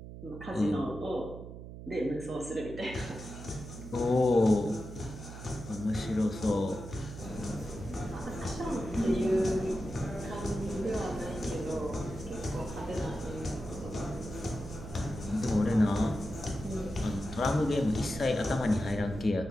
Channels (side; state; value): right; noise; hum, 12 dB below the sound